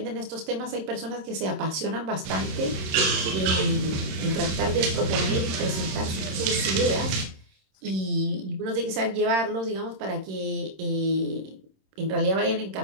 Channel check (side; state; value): left; late; 26 ms